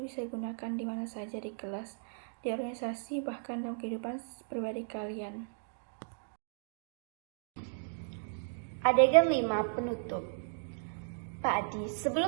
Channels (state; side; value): silent; left; digital silence